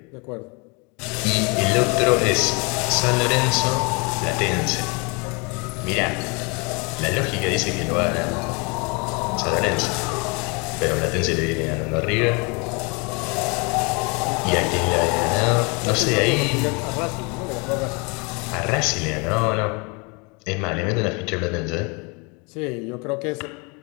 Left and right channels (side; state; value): right; quieter; 30.8 dB